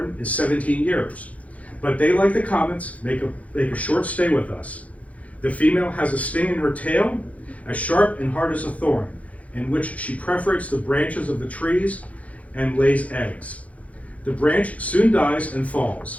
is 17 years. But they, like the comets, make a short stay with us. The female has a sting in her tail, as sharp and hard as a thorn, in which she perforates the branches of the trees and lays eggs. The branch soon dies and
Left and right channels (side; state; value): right; late; 0.067 ms